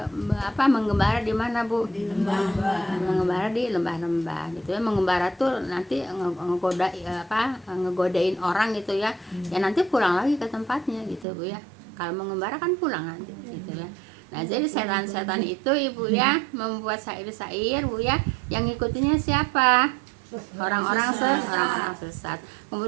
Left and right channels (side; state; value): left; drops out; at 11.2 s